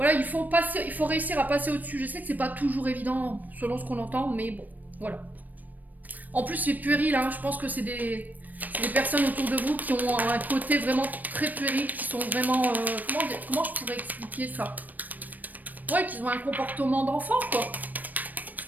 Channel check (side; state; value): left; late; 0.084 ms